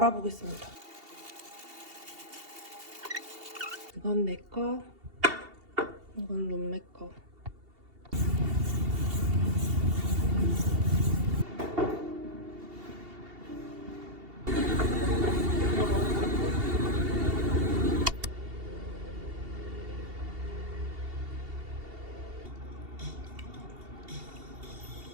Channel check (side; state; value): left; late; 2.7 ms